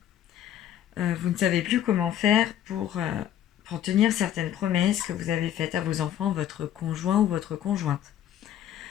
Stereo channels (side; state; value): right; quieter; 11.0 dB